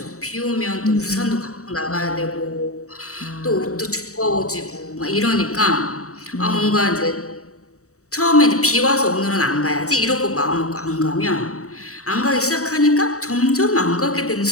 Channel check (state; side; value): late; right; 0.65 ms